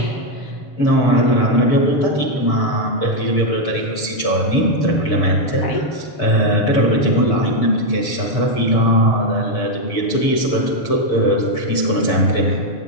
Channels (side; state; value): right; late; 6.8 ms